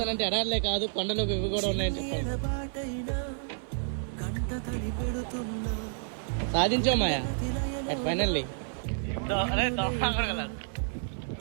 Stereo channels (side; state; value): left; silent; 58 dB below the other